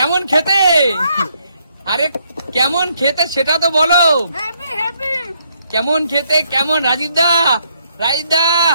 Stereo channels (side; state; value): both; inverted; correlation -0.73